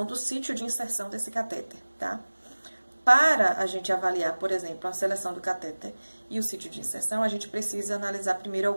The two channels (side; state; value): both; inverted; correlation -1.00